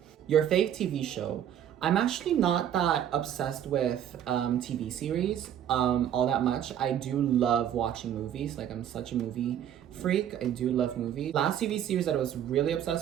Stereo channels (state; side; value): quieter; left; 10.2 dB